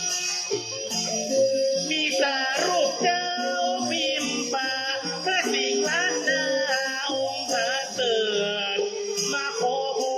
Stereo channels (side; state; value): both; identical; correlation 1.00